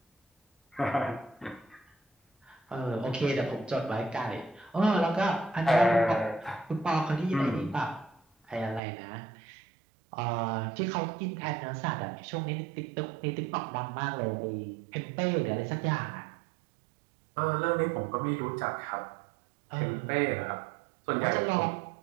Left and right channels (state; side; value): drops out; left; at 8.8 s